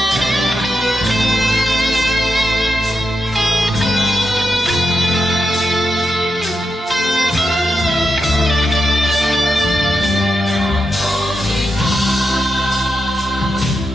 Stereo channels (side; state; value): both; normal; correlation 0.86